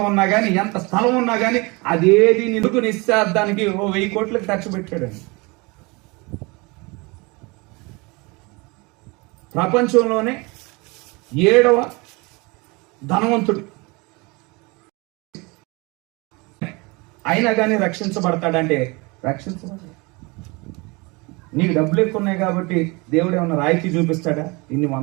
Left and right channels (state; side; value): quieter; left; 26.7 dB